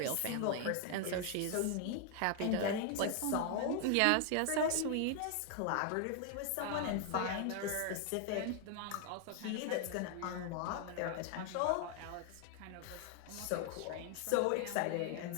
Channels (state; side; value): different; both; correlation 0.00